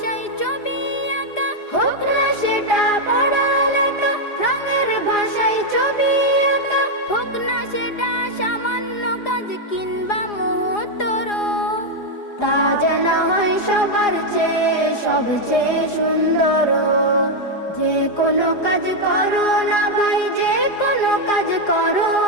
ছবি আঁকা, হোক না সেটা পড়ালেখা, রঙের ভাষায় ছবি আঁকা, হোক না সেটা সামান্য কাজ কিংবা মুহূর্তর, তা যেন হয় সবার চেয়ে সবচেয়ে সুন্দর। যে কোনো কাজ করো না ভাই, যে কোনো কাজ করো,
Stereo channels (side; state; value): right; late; 4.9 ms